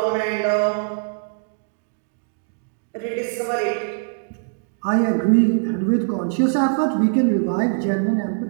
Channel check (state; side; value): silent; left; digital silence